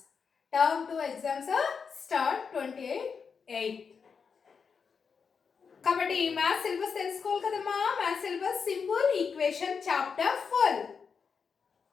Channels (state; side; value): quieter; right; 5.9 dB